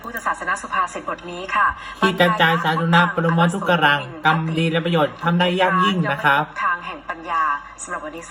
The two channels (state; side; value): identical; both; correlation 1.00